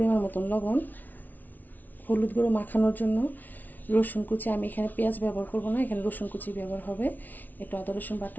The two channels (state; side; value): late; right; 0.081 ms